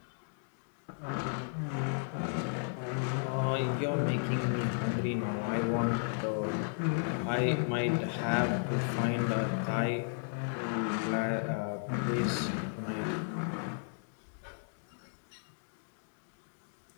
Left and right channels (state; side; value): silent; right; digital silence